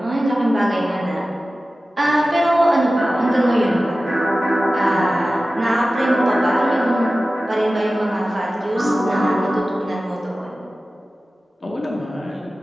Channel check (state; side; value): normal; both; correlation 0.96